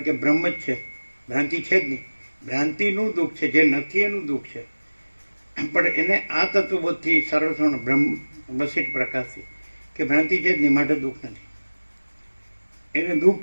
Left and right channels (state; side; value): inverted; both; correlation -1.00